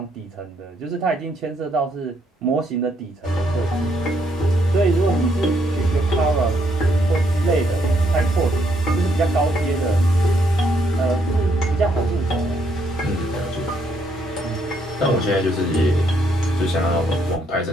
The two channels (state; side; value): normal; both; correlation 0.73